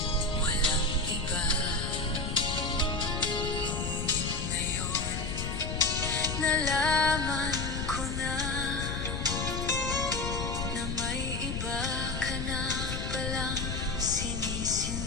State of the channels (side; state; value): left; noise; rumble, 3 dB below the sound